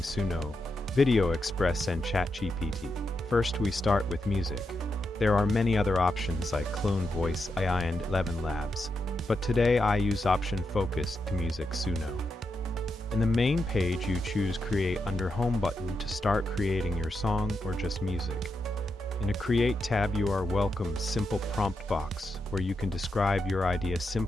Video Express and ChatGPT. First we start with music. There are many other options like Clone Voice, AI and 11 Labs, but today I use option focused to music Suno. In the main page you choose Create under Home button to start creating your song or just music. In a Create tab you are welcome simple prompt box where you can describe your idea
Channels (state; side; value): normal; both; correlation 0.85